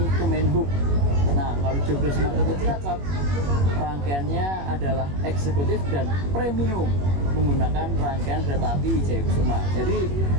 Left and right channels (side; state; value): left; late; 21 ms